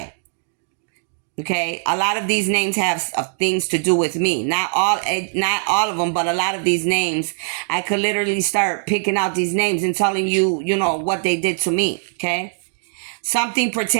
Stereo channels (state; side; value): silent; left; digital silence